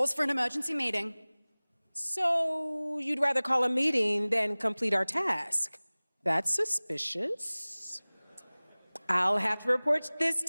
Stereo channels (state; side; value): inverted; both; correlation -1.00